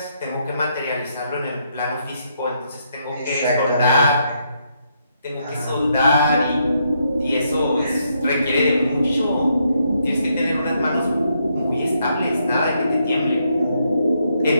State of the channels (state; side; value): inverted; both; correlation -0.77